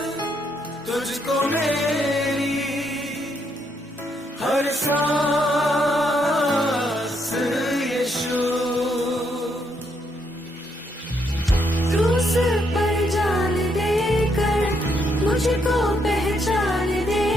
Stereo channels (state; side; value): normal; both; correlation 0.75